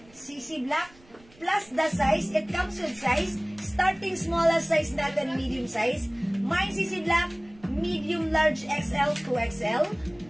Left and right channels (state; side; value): noise; right; rumble, 27 dB below the sound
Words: CC Black plus the size. It comes with size. Starting smallest size natin, medium size. Mine CC Black, medium large XL to XL.